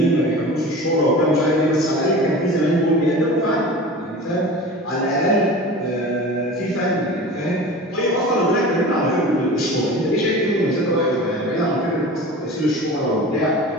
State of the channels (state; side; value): normal; both; correlation 0.35